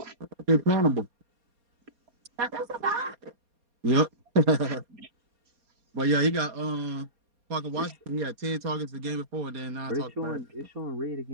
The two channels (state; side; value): late; left; 4.2 ms